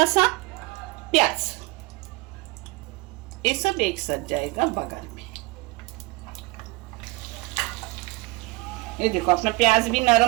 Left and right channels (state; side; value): quieter; left; 23.3 dB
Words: सा प्याज। ये सब एक साथ जाएगा बघार में। ये देखो, अपना प्याज भी